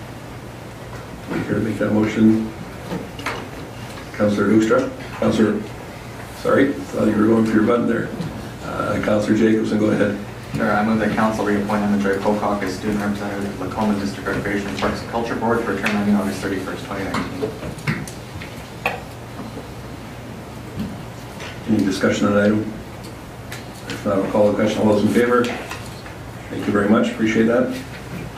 Here to make that motion, Councillor Hoekstra. Councillor, sorry, thought you were going for your button there. Councillor Jacobson, go ahead. Sure, I move that council reappoint Emma Joy Pocock as student representative of Lacombe District Recreation Parks and Culture Board for a term ending August 31st, 2019. Any discussion on that item? If not, I'll call the question. All those in favor? Thank you very much. Appreciate that.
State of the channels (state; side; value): identical; both; correlation 1.00